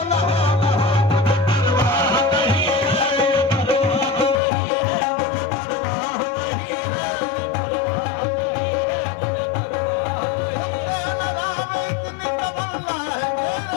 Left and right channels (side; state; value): right; drops out; at 4.4 s